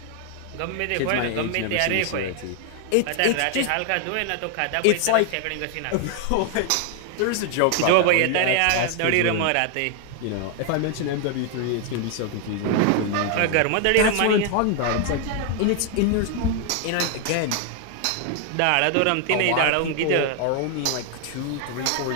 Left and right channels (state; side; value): different; both; correlation 0.00